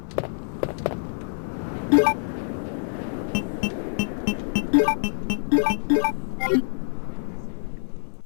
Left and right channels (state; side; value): silent; right; digital silence